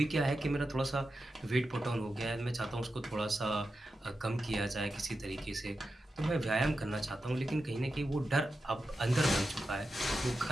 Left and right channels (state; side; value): normal; both; correlation 0.90